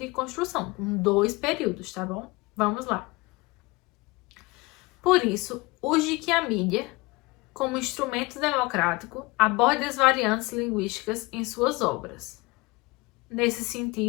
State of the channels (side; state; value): right; quieter; 24.0 dB